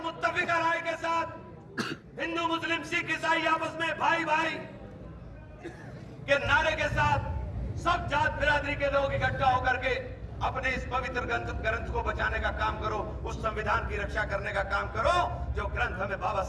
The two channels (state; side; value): identical; both; correlation 1.00